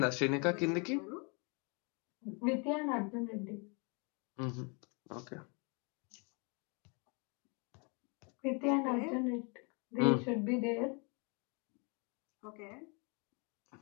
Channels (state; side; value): quieter; right; 33.6 dB